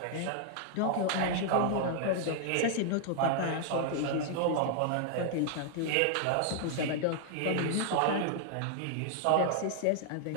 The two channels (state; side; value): different; both; correlation -0.01